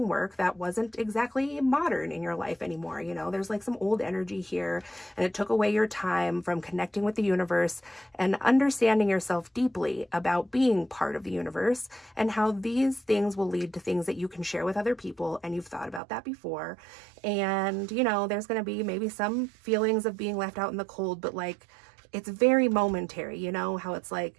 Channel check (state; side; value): drops out; left; at 16.0 s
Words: work that wasn't exactly modern in your life anymore. You know, there's like some old energy here. And it took away your time from connecting with the universe and understanding yourself deeply about being part of the universe, and how these things will lead to things that you can share with other people. And you've thought about that before. And, you know, there's going to be maybe some feelings of being left out in the cold, but like, it's very momentary, you know, how it's like,